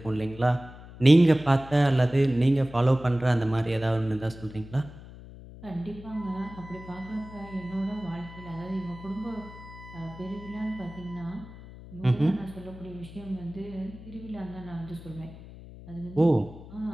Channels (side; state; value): left; noise; hum, 16 dB below the sound